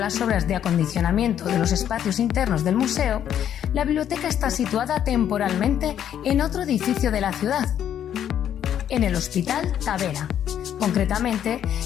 obras de acondicionamiento de los espacios internos del museo, la biblioteca está situada temporalmente en otro edificio de la ciudad, en el Hospital Tavera, concretamente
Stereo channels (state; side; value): quieter; right; 9.9 dB